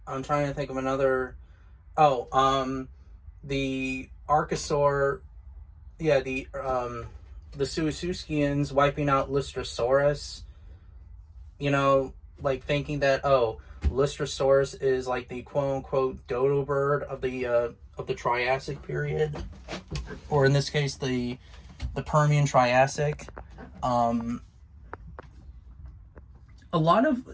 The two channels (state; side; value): identical; both; correlation 1.00